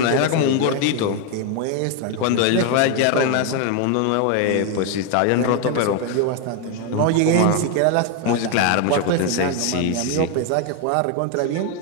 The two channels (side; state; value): both; different; correlation 0.01